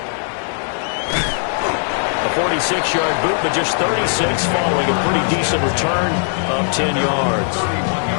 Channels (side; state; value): right; silent; 66 dB below the other